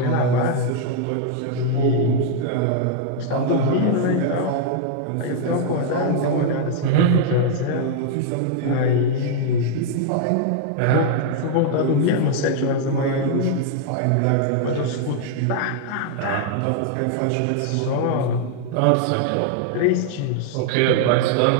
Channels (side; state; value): both; different; correlation -0.01